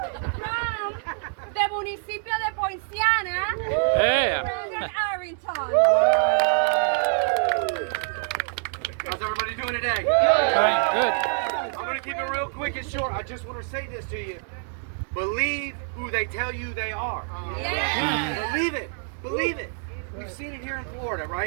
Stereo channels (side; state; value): left; silent; 58 dB below the other